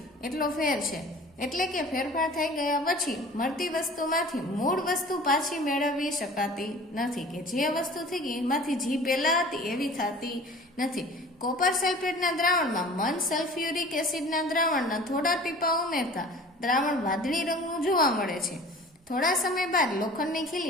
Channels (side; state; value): both; normal; correlation 0.44